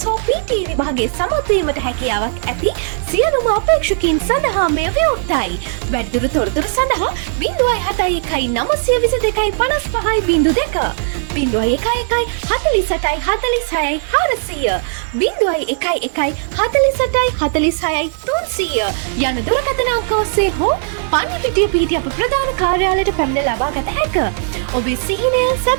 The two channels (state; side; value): silent; left; digital silence